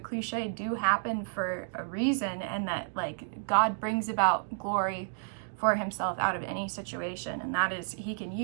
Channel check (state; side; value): silent; left; digital silence